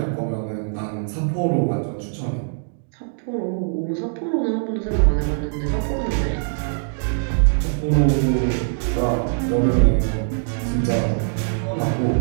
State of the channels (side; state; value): left; silent; digital silence